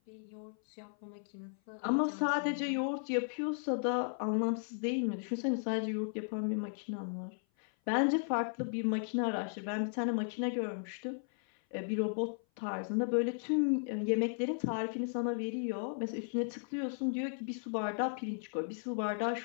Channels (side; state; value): right; silent; 54 dB below the other